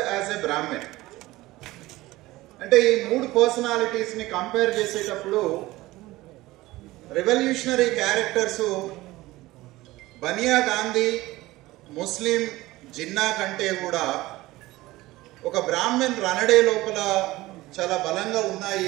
as a Brahmin. అంటే ఈ మూడు పర్సనాలిటీస్ని కంపేర్ చేసేటప్పుడు revolutionary characters Bania Gandhi, Muslim Jinnah కంటే కూడా ఒక బ్రాహ్మణ్ రనడే లోపల చాలా బలంగా ఉన్నాయి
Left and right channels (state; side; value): quieter; left; 18.5 dB